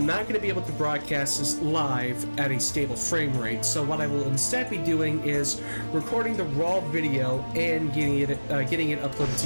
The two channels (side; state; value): both; inverted; correlation -1.00